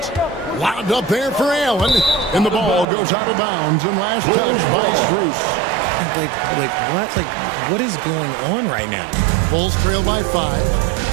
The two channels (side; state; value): left; drops out; at 2.9 s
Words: Lobbed up there for Allen. And the ball goes out of bounds and last touch by Strus. Like what is going on right now? Bulls trail by 5.